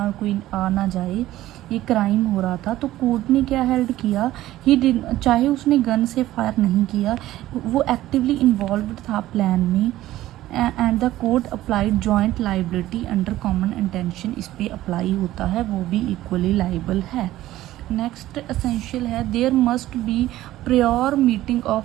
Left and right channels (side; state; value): left; quieter; 15.0 dB